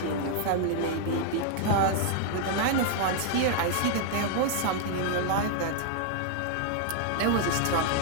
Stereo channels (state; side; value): different; both; correlation 0.00